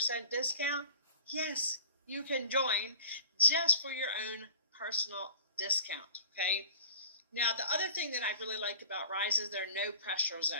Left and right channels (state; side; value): inverted; both; correlation -0.46